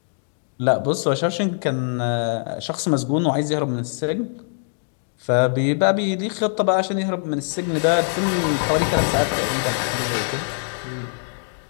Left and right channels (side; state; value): right; silent; digital silence